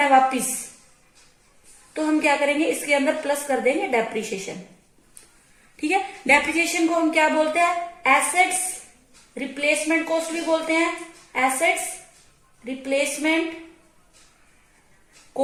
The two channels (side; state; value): both; identical; correlation 1.00